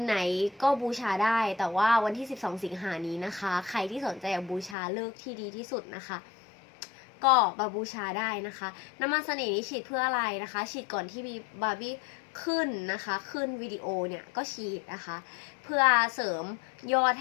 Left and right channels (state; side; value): drops out; right; at 4.8 s